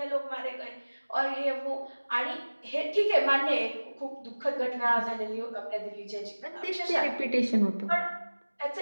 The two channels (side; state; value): both; inverted; correlation -1.00